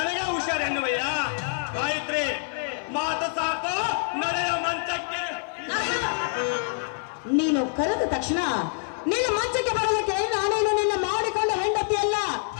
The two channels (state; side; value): silent; right; 56 dB below the other